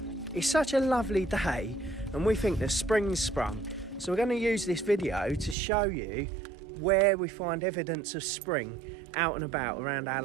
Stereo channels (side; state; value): left; drops out; at 5.6 s